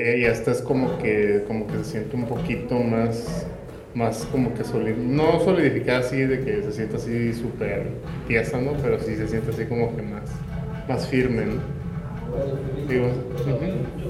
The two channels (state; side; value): identical; both; correlation 1.00